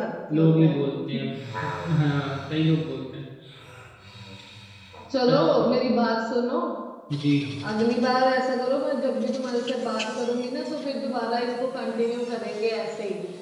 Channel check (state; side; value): identical; both; correlation 1.00